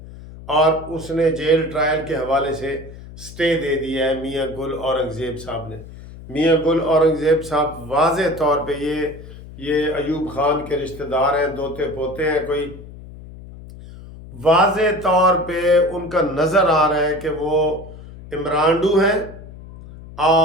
اور اس نے جیل ٹرائل کے حوالے سے سٹے دے دیا ہے میاں گل اورنگزیب صاحب نے۔ میاں گل اورنگزیب صاحب واضح طور پہ یہ ایوب خان کے رشتہ دار ہیں، دوتے پوتے ہیں کوئی، واضح طور پہ ان کا نظر آ رہا ہے کہ وہ عمرانڈو ہیں،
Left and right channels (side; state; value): left; noise; hum, 16 dB below the sound